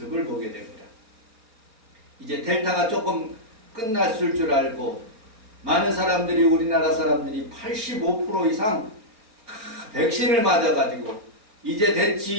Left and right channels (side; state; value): left; late; 4.4 ms